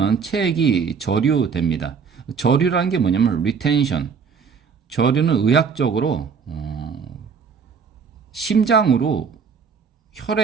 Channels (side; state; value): left; quieter; 6.0 dB